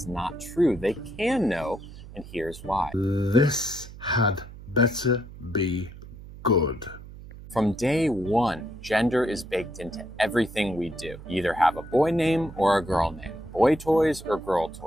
not true. They can know, and here's why. This had better be good. From day one, gender is baked into everything we do. You either have a boy name or a girl name. Boy toys or girl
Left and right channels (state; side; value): noise; right; hum, 16 dB below the sound